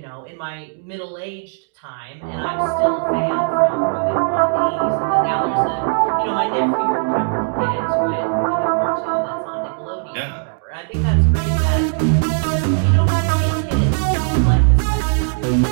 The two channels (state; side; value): silent; left; 59 dB below the other